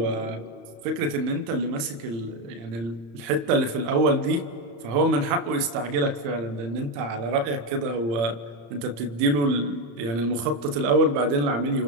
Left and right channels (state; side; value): late; left; 34 ms